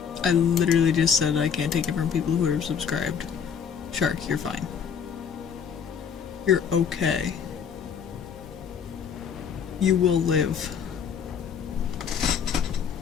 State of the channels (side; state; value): right; quieter; 7.2 dB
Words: I literally just said I can't take it from people who are subscribed. Shark, you're fine. You're okay. You will live.